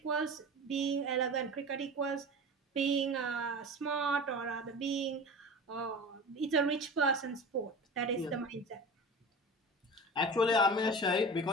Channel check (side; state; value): both; normal; correlation 0.33